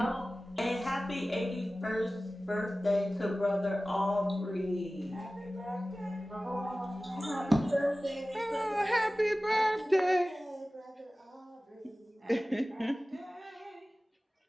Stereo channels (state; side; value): normal; both; correlation 0.97